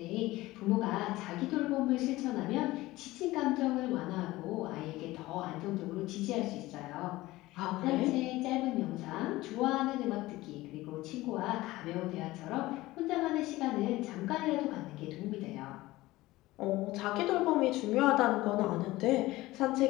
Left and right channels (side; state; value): right; quieter; 18.3 dB